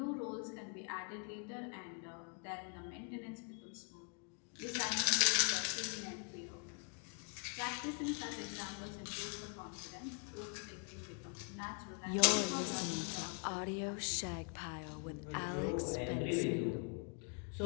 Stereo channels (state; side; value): quieter; right; 39.9 dB